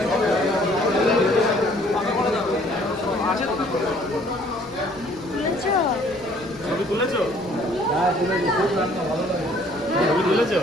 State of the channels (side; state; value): left; noise; rumble, 24 dB below the sound